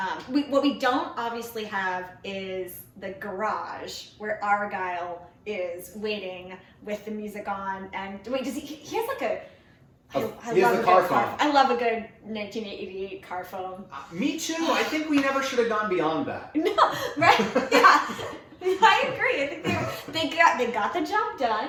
what we don't obviously have is the garage where Argyle is waiting with the music on, and wait, does he has like a. He has the car phone. I love a good 1988 car phone. Me too. I think we never should have gone beyond that. No, right? Yeah, I agree. I think they got the job done.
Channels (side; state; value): both; identical; correlation 1.00